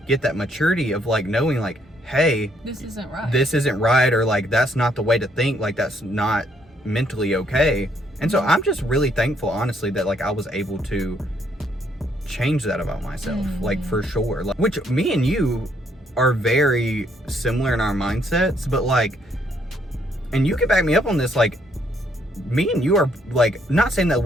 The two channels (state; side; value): normal; both; correlation 0.70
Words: get that maturity of like knowing like, hey, this isn't right, or like that's not the way to think, like that's not mentally okay. And so I'm just really thankful, honestly, that like I was able to change that about myself, like for sure. Like, which me and you are very similar in our mindsets, but like, and you can back me up on this, like me and you are like, not saying that